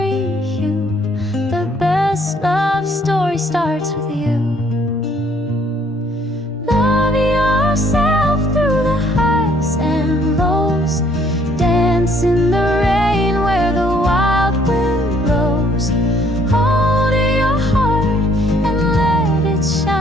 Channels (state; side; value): normal; both; correlation 0.64